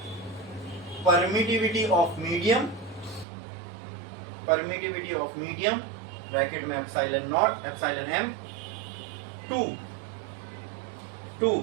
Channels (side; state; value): left; drops out; at 3.2 s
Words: permittivity of medium, permittivity of medium bracket में epsilon naught, epsilon m, to